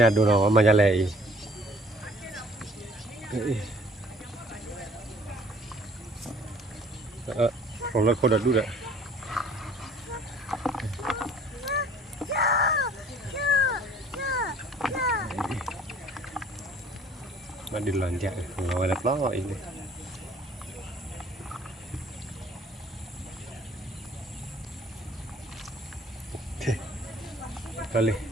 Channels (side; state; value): both; normal; correlation 0.55